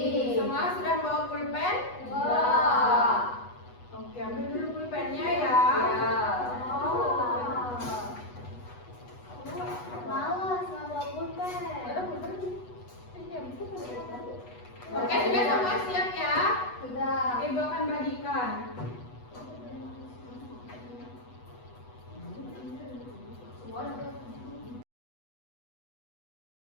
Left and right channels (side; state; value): right; late; 8.1 ms